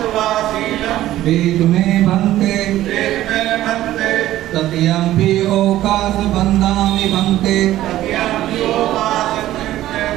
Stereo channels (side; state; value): left; quieter; 14.2 dB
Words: वेद में बंते तृतीयंपि ओकास बंदामि बंते